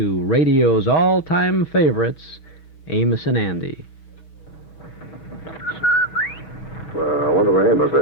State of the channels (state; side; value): late; right; 6.8 ms